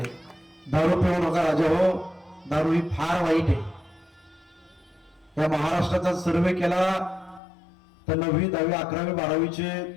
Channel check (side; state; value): right; drops out; at 7.4 s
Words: दारू पिऊ नका राजा हो, दारू ही फार वाईट आहे. या महाराष्ट्राचा सर्वे केला तर 9वी, 10वी, 11वी, 12वीचे